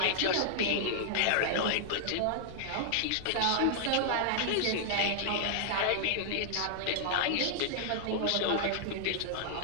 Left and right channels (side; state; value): both; different; correlation -0.01